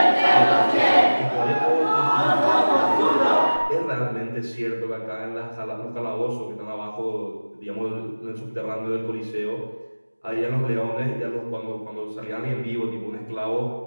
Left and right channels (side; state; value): both; inverted; correlation -1.00